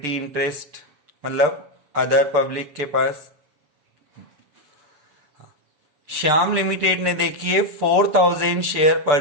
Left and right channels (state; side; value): late; left; 6.8 ms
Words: इंटरेस्ट मतलब अदर पब्लिक के पास। श्याम लिमिटेड ने देखिए 4,000 शेयर